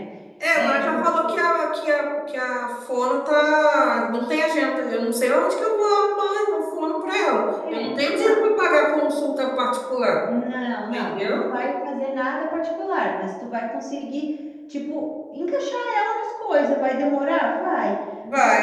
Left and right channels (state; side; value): identical; both; correlation 1.00